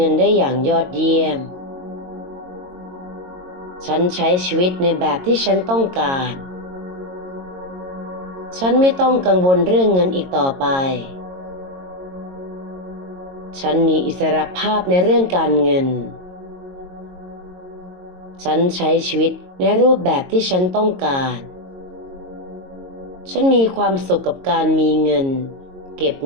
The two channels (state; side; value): late; left; 22 ms